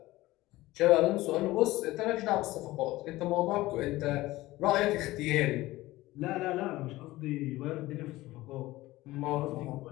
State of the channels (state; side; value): quieter; right; 18.0 dB